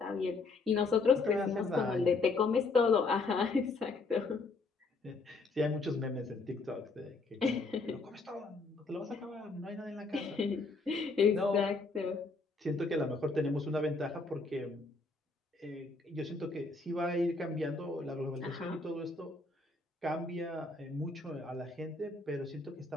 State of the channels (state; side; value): quieter; right; 3.8 dB